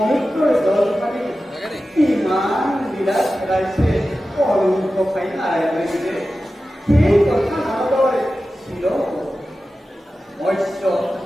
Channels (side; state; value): both; normal; correlation 0.94